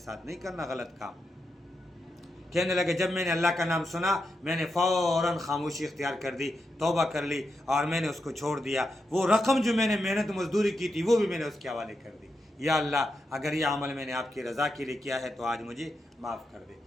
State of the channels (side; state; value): both; normal; correlation 0.86